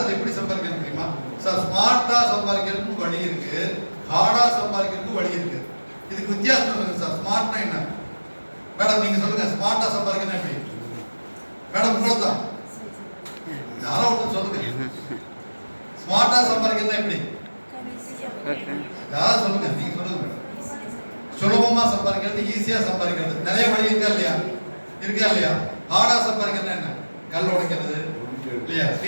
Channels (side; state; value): both; inverted; correlation -1.00